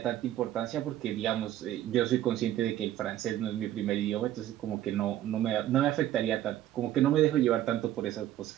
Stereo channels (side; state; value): left; quieter; 12.7 dB